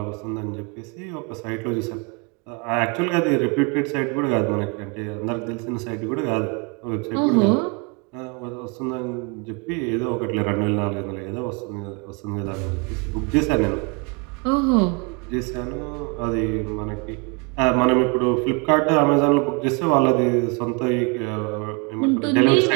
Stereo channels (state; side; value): quieter; left; 31.5 dB